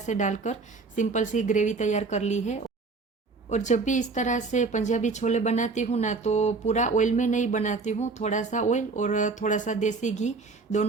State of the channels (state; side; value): quieter; left; 4.1 dB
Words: डालकर सिंपल सी ग्रेवी तैयार कर ली है। और जब भी इस तरह से पंजाबी छोले बनाती हूँ ना, तो पूरा ऑयल में नहीं बनाती हूँ, थोड़ा सा ऑयल और थोड़ा सा देसी घी